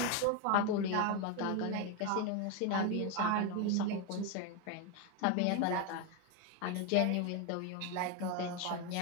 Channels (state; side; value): different; both; correlation 0.02